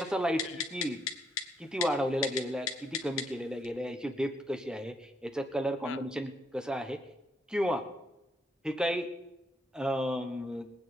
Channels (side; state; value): both; normal; correlation 0.75